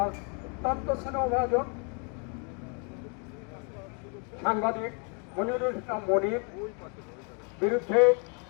অত্যন্ত স্নেহভাজন সাংবাদিক মনিরুল ইসলাম মনির বিরুদ্ধে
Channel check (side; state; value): right; quieter; 37.2 dB